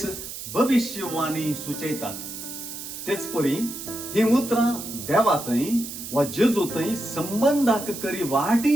भविष्यवाणी सुचयतात. तेच परी ही उतरां देवातय वा जेजूतय संबंधाक करी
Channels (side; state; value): right; noise; hiss, 9 dB below the sound